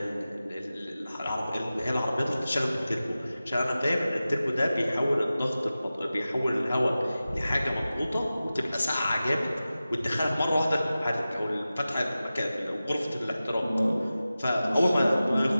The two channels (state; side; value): inverted; both; correlation -0.95